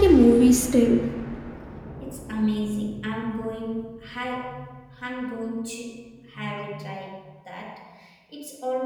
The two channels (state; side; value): identical; both; correlation 1.00